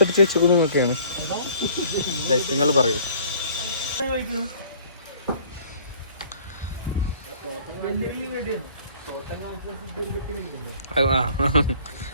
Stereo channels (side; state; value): both; inverted; correlation -0.53